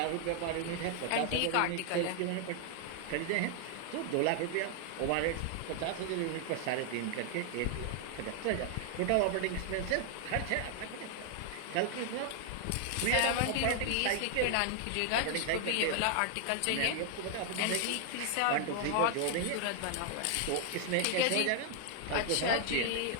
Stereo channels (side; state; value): both; different; correlation 0.00